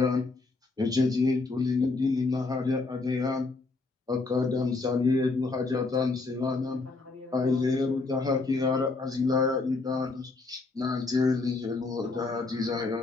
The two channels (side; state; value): right; quieter; 3.7 dB